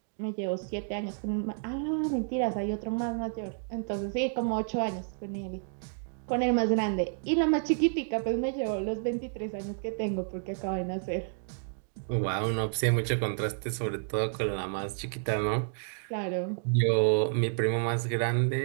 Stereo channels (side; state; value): left; silent; digital silence